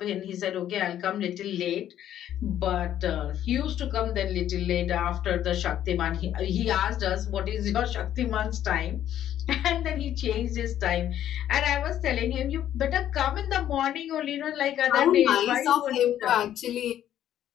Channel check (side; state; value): right; quieter; 11.2 dB